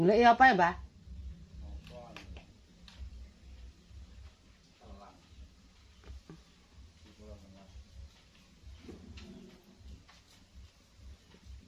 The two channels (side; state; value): both; identical; correlation 1.00